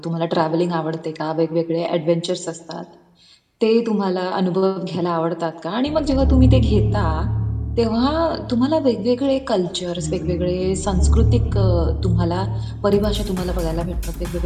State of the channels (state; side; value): identical; both; correlation 1.00